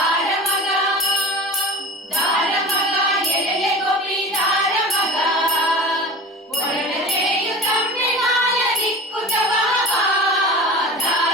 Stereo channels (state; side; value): normal; both; correlation 0.36